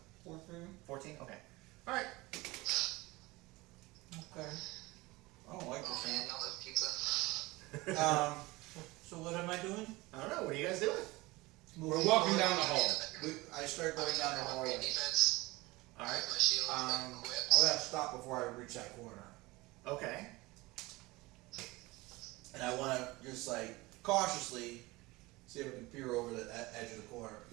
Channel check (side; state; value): left; quieter; 21.7 dB